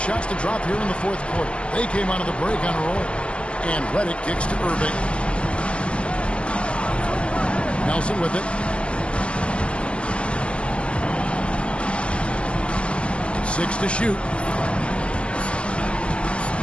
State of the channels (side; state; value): right; late; 0.054 ms